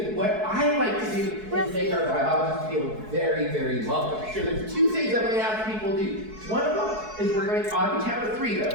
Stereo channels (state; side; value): late; left; 4.6 ms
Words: what I like to do is make our biologists feel very, very welcome. So there's 2 things I'm going to ask people to do. One of them is we're going on the count of 3